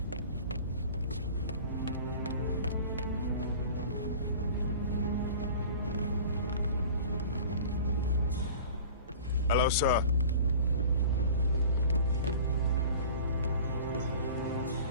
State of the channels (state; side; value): inverted; both; correlation -0.42